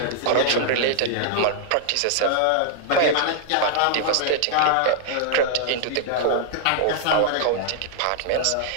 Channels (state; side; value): different; both; correlation -0.01